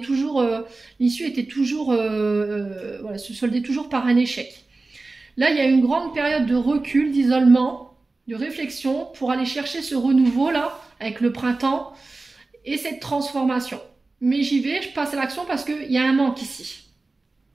l'issue était toujours... voilà, se soldait toujours par un échec. Là, il y a une grande période de recul, d'isolement, de réflexion pour aller chercher ce renouveau là avec le printemps et cette transformation. Mais j'y vais, je passe à l'action parce qu'il y a un manque ici.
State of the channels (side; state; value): left; quieter; 3.4 dB